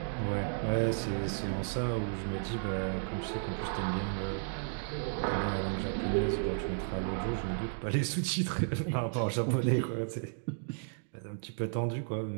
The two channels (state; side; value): silent; left; digital silence